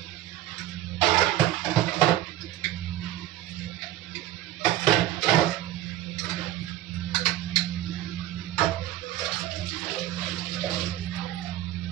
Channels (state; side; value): quieter; left; 14.0 dB